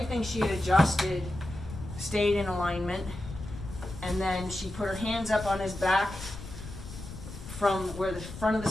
she had adjusted stayed in alignment. And then she put her hands up on his back from where the front of the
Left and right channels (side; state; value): left; noise; rumble, 11 dB below the sound